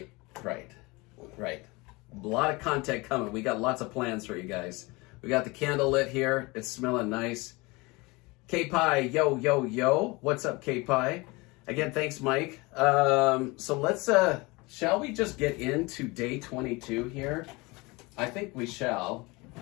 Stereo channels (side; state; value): right; quieter; 24.6 dB